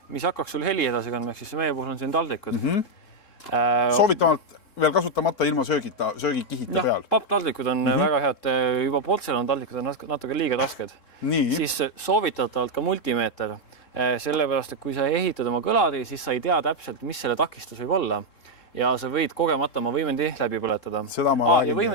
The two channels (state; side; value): late; right; 3.7 ms